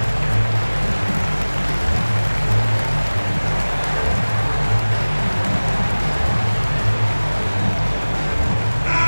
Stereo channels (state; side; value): inverted; both; correlation -1.00